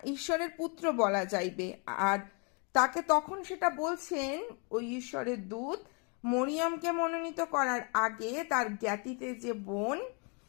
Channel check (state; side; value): quieter; right; 35.0 dB